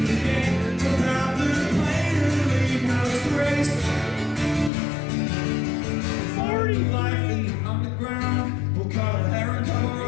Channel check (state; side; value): drops out; right; at 4.7 s